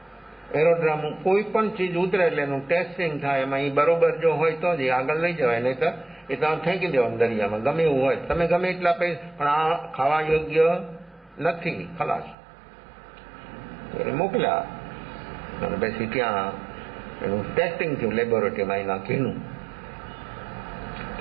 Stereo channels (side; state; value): left; drops out; at 12.4 s